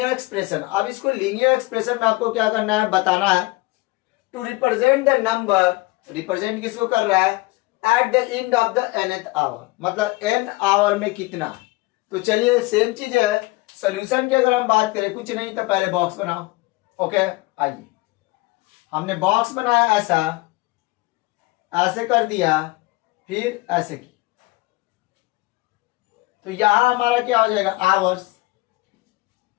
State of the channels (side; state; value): right; quieter; 22.1 dB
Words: एक्सप्रेशन। अब इसको लीनियर एक्सप्रेशन में आपको क्या करना है बताना है। To represent the number, represent किसको कर रहा है at the end of the nth hour, मतलब n आवर में कितना। तो चलिए सेम चीज है, सोल्यूशन की अगर हम बात करें कुछ नहीं तो पहले बॉक्स बनाओ। ओके, आइए हमने बॉक्स बनाया, ऐसा ऐसे कर दिया, फिर ऐसे की, तो यहां हमारा क्या हो जाएगा आवर्स,